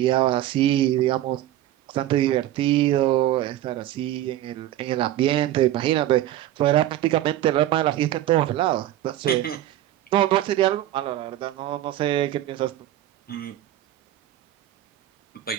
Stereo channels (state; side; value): quieter; left; 13.4 dB